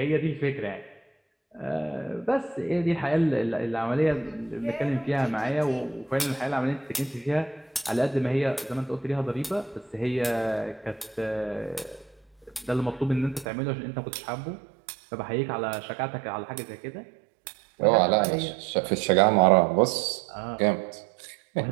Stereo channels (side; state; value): left; drops out; at 13.5 s